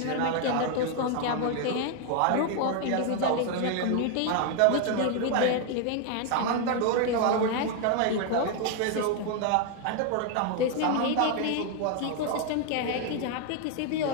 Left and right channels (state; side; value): different; both; correlation 0.01